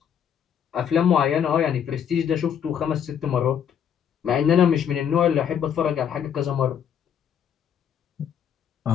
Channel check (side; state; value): right; quieter; 8.5 dB